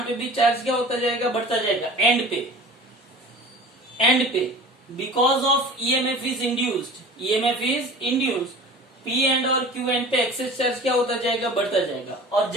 पे भी चार्ज क्या होता जाएगा, बढ़ता जाएगा एंड पे, एंड पे, because of EMF is induced, EMF is induced, P and और क्यू एंड पे एक्सेस चार्ज क्या होता जाएगा, बढ़ता जाएगा। और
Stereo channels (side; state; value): both; normal; correlation 0.40